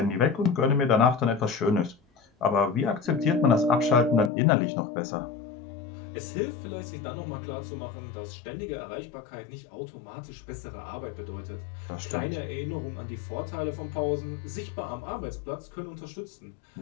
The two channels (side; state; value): right; drops out; at 4.3 s